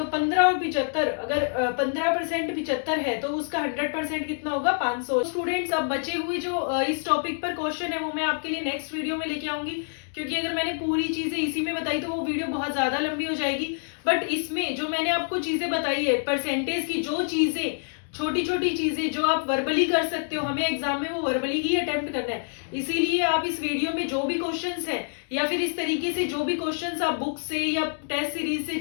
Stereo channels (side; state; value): right; silent; digital silence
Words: 15 और 75, अगर 15% 75 है तो उसका 100% कितना होगा, 500। स्टूडेंट्स अब बचे हुए जो इस टॉपिक पर क्वेश्चन है वो मैं आपके लिए नेक्स्ट वीडियो में लेके आऊंगी, क्योंकि अगर मैंने पूरी चीजें इसी में बताई तो वो वीडियो बहुत ज्यादा लंबी हो जाएगी। बट इसमें जो मैंने आपको चीजें बताई है परसेंटेज की, जो चीजें छोटी छोटी चीजें जो आप वर्बली कर सकते हो, हमें एग्जाम में वो वर्बली ही अटेम्प्ट करना है। इसीलिए आप इस वीडियो में जो भी क्वेश्चंस हैं या फिर इस तरीके से जो भी क्वेश्चंस आप बुक से या टेस्ट सीरीज से